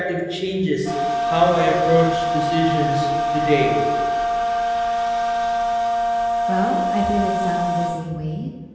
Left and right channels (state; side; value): identical; both; correlation 1.00